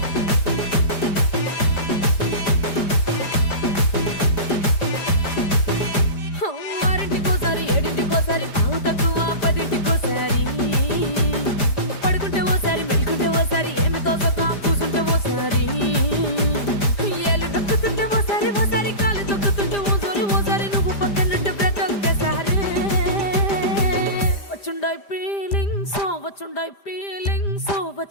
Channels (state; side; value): late; right; 5.0 ms